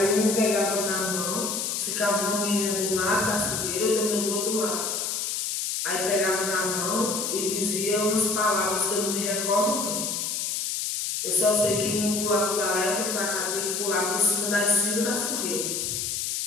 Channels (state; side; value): noise; left; hiss, 1 dB below the sound